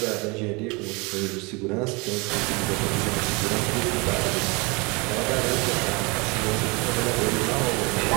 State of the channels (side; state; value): left; quieter; 27.9 dB